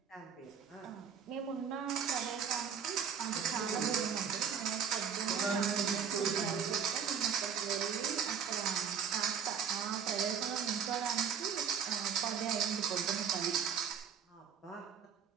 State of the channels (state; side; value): quieter; left; 7.2 dB